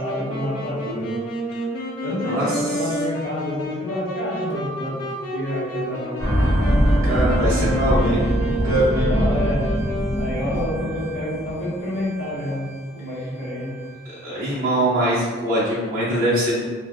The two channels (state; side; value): normal; both; correlation 0.59